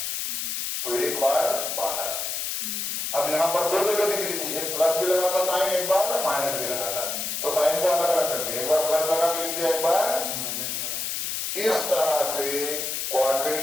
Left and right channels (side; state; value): left; noise; hiss, 2 dB below the sound